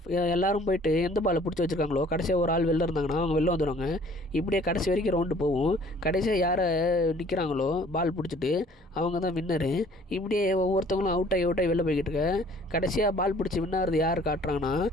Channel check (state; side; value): normal; both; correlation 0.55